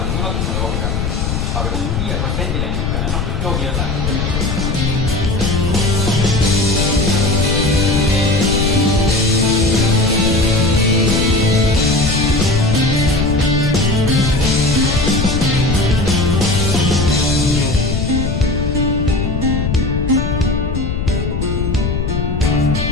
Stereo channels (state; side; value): noise; left; rumble, 1 dB below the sound